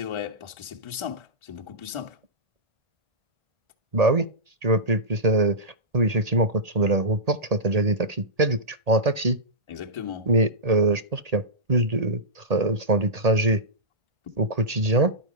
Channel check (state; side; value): late; left; 1.8 ms